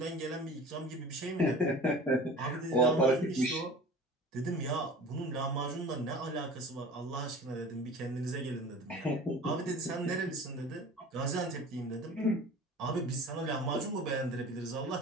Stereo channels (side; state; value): both; normal; correlation 0.40